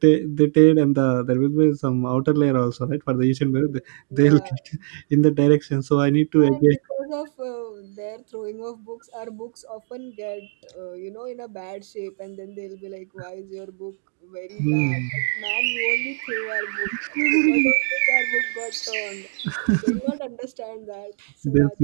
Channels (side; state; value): left; silent; digital silence